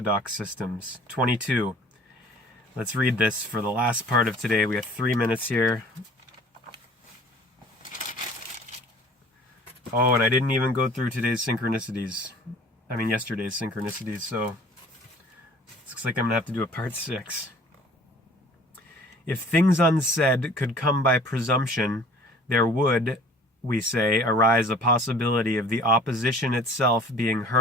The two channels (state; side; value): normal; both; correlation 0.50